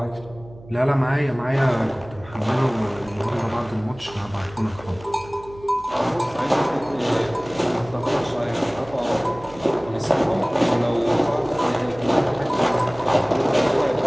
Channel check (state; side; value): noise; right; hum, 20 dB below the sound